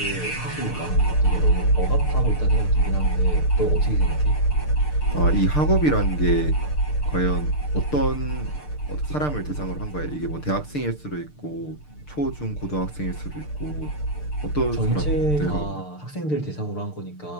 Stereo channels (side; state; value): right; late; 6.7 ms